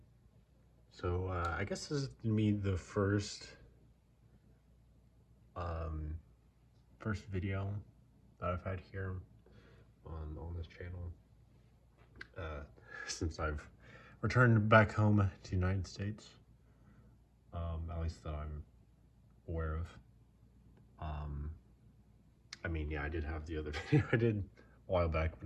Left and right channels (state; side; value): identical; both; correlation 1.00